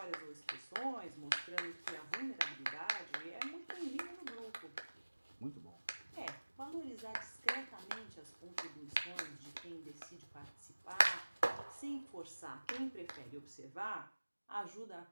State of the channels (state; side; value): inverted; both; correlation -1.00